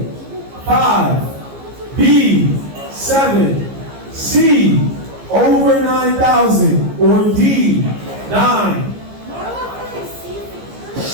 5, B, 7, C, over 9,000, or D, 9?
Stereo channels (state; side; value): late; left; 15 ms